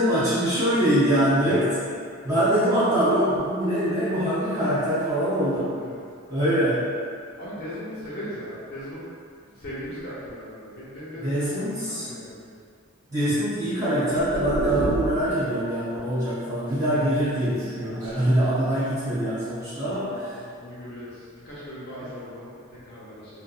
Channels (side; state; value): both; normal; correlation 0.42